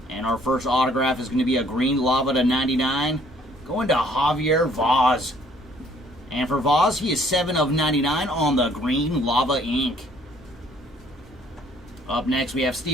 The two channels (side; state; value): both; normal; correlation 0.61